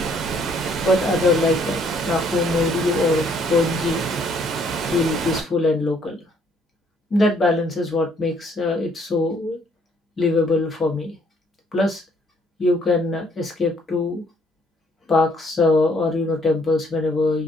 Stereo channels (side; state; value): both; normal; correlation 0.65